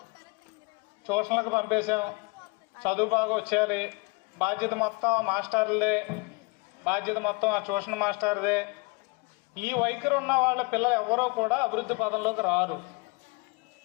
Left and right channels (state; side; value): quieter; right; 28.8 dB